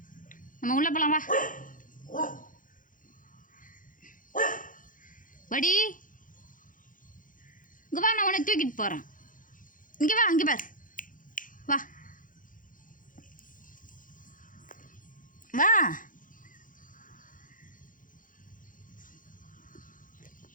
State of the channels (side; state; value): right; late; 0.39 ms